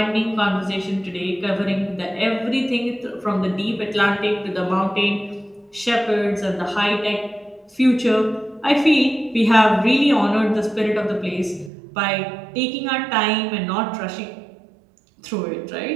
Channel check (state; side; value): drops out; left; at 11.7 s